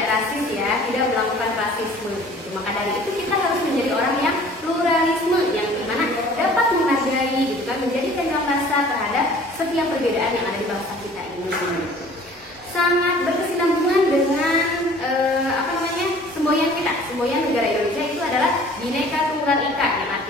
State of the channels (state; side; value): normal; both; correlation 0.50